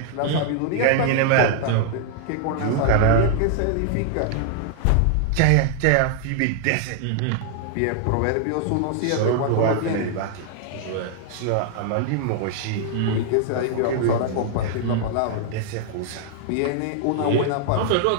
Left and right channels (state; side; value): different; both; correlation 0.00